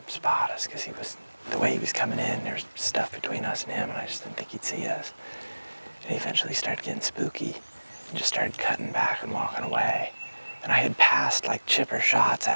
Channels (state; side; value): inverted; both; correlation -1.00